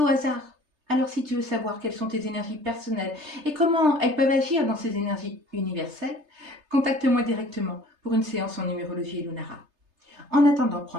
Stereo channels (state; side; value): late; left; 3.3 ms